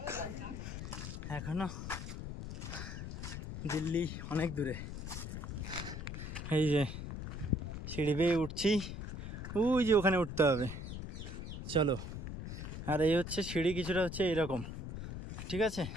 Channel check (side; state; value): left; noise; rumble, 7 dB below the sound